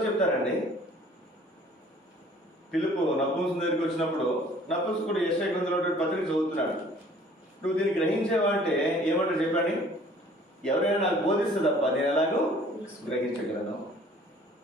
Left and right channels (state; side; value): normal; both; correlation 0.53